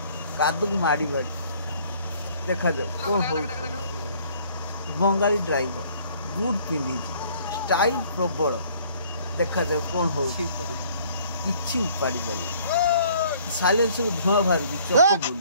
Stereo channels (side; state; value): both; inverted; correlation -0.58